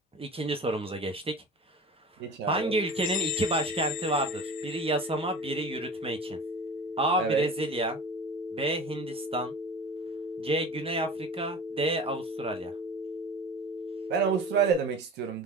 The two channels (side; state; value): both; normal; correlation 0.37